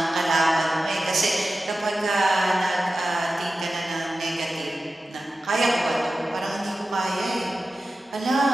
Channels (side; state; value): both; normal; correlation 0.94